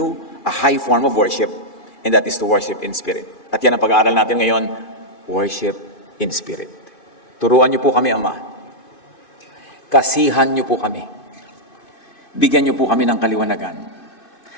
a high form of worship, and that is to worship in spirit. At yan ang pag-aaral natin ngayon, worship in spirit. Turuan niyo po kami, Ama. Kasihan niyo po kami. Bigyan niyo po kami ng kaliwanagan.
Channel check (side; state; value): right; late; 2.5 ms